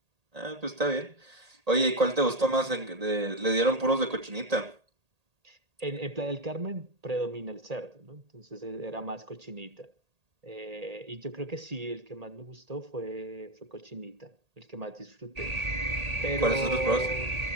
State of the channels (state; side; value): late; left; 1.8 ms